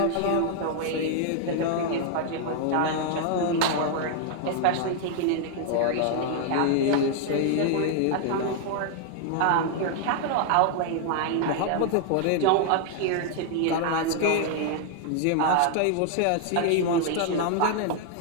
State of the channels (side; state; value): both; different; correlation 0.00